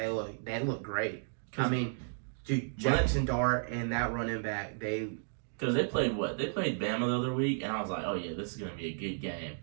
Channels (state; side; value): silent; left; digital silence